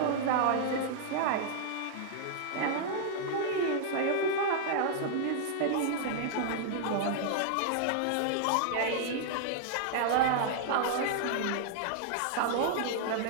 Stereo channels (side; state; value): both; different; correlation -0.01